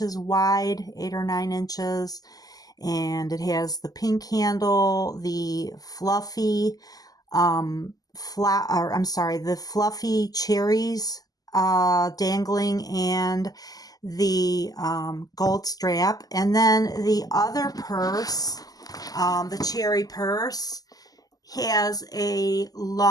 wide, 8 or 9 inches. And it has the pink handle, the fluffy the fluffy cherries dangling, and the gold strap. And then the other purse, the cherry purse, has a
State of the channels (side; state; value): right; late; 0.18 ms